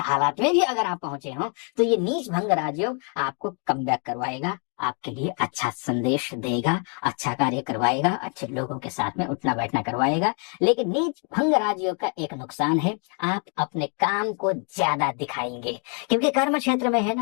में भी अगर आप पहुंचे हो, तो ये नीच भंग राजयोग आपको कम बैक करवाएगा, आपके लिए अच्छा संदेश देगा, अच्छा कार्य करवाएगा, अच्छे लोगों के साथ में उठना बैठना करवाएगा। लेकिन नीच भंग राजयोग का एक नुकसान है, आप अपने काम को ज्यादा दिखाएंगे, क्योंकि कर्म क्षेत्र में है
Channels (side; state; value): right; quieter; 39.5 dB